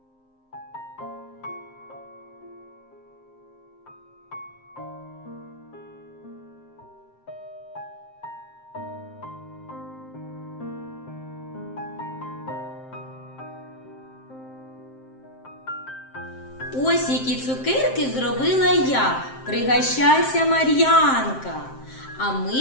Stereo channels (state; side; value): late; right; 7.6 ms